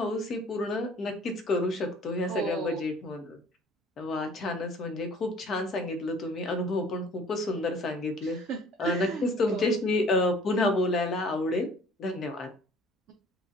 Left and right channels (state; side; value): normal; both; correlation 0.52